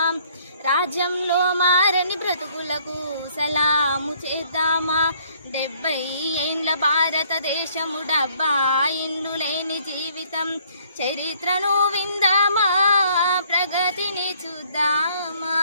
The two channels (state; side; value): inverted; both; correlation -0.62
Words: రాజ్యంలో మారని బ్రతుకులకు సలాము చేద్దామా 70 ఏండ్ల భారతదేశము డబ్బా ఇండ్లు లేని జీవితం చరిత్రను విందామా ప్రగతిని చూద్దామా